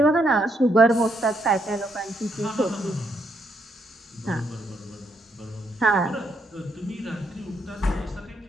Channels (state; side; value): normal; both; correlation 0.75